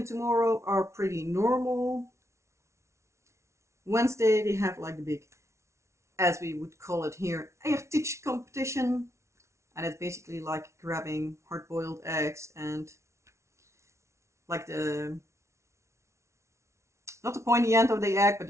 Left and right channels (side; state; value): left; late; 0.13 ms